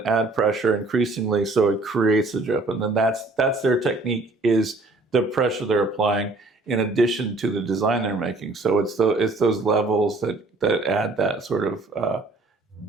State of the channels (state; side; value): quieter; left; 3.0 dB